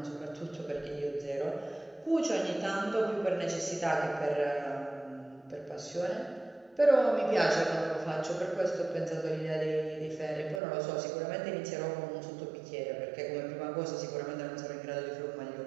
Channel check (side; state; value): left; drops out; at 10.6 s